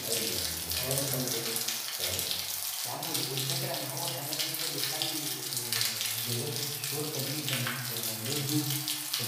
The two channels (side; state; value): both; identical; correlation 1.00